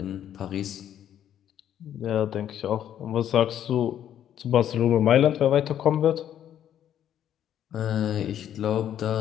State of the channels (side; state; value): right; quieter; 10.4 dB